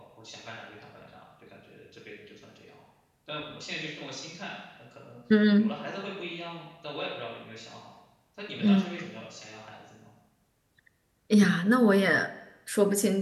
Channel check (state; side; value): identical; both; correlation 1.00